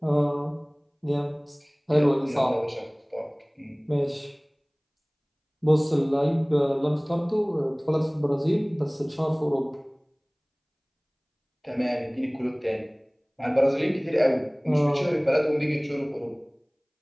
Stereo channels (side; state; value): both; identical; correlation 1.00